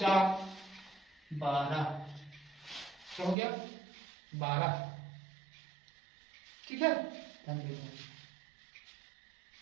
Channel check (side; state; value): left; drops out; at 3.4 s